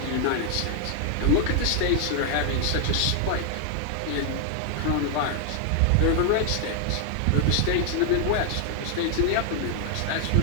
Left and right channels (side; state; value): both; different; correlation 0.00